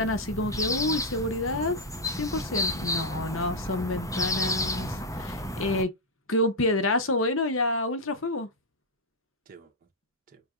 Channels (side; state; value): both; normal; correlation -0.03